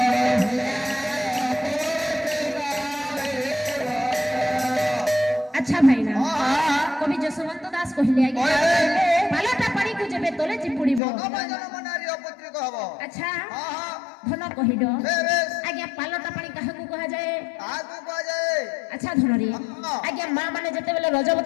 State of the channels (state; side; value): drops out; right; at 11.0 s